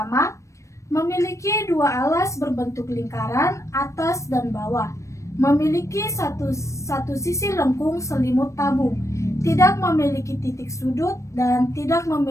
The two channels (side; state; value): right; late; 0.15 ms